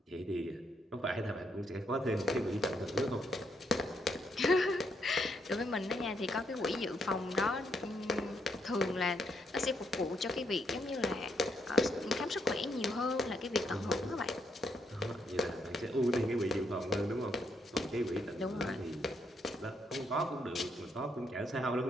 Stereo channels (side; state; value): both; normal; correlation 0.76